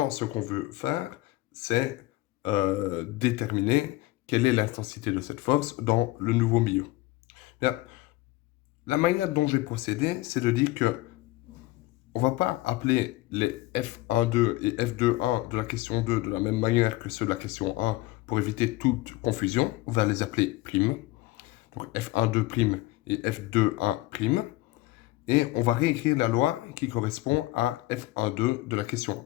ce qu'on veut faire, c'est déterminer quelle est l'intensité de cette force dans le nouveau milieu. Bien, la manière dont j'ai procédé, c'est de dire que On ne va pas appeler les F1,2 et F2,1 de la question 2 de la même manière que ceux de la question 1 pour éviter toute confusion. On va les appeler primes. Donc F1,2' et F2,1'. Et on va réécrire la loi qui correspond à F1,2 de la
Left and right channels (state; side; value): quieter; right; 18.9 dB